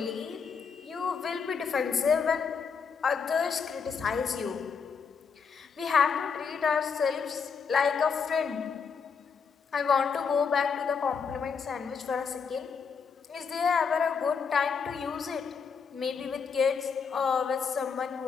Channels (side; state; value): right; quieter; 5.9 dB